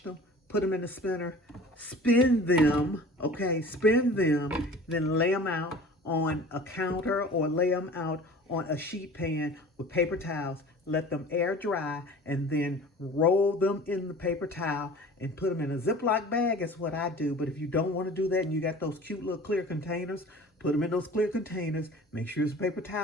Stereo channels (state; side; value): normal; both; correlation 0.43